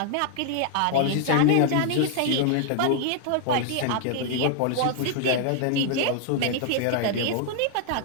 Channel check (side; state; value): both; different; correlation 0.00